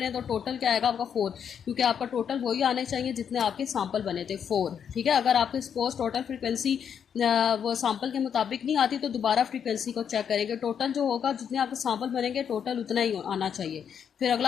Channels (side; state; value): right; quieter; 7.9 dB